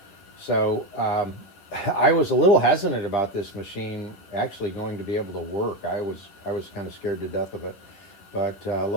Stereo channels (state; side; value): late; right; 11 ms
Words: So I was a little hesitant about this machine actually going to be able to work. I was kind of scared to death of it. But